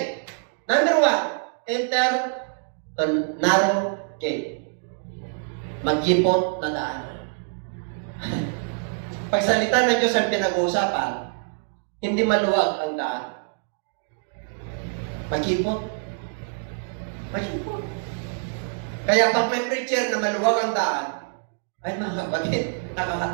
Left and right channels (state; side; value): silent; left; digital silence